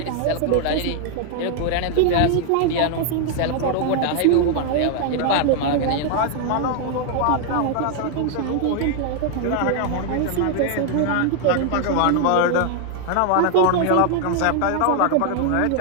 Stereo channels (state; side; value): different; both; correlation 0.00